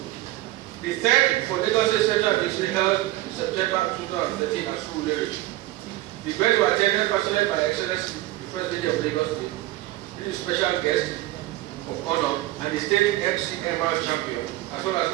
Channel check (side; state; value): left; quieter; 16.9 dB